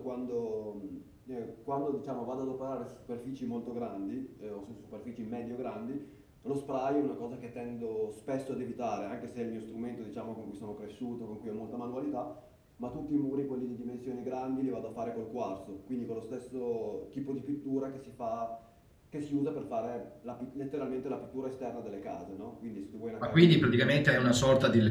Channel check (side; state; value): both; identical; correlation 1.00